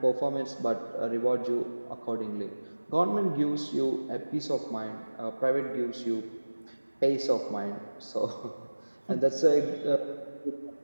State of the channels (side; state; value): both; inverted; correlation -1.00